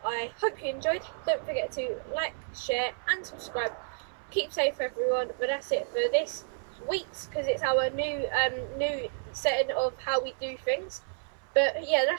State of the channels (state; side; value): silent; left; 57 dB below the other